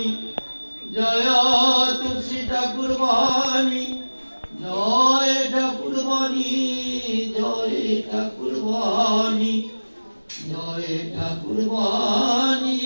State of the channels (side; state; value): both; inverted; correlation -1.00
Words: জয় তুলসী ঠাকুর বাণী, জয় ঠাকুর বাণী, জয় ঠাকুর বাণী, জয় ঠাকুর বাণী,